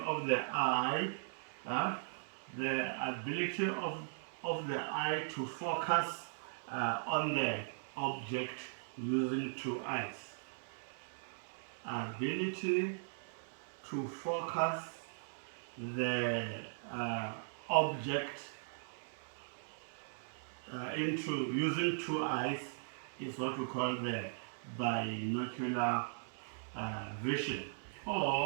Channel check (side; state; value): left; silent; digital silence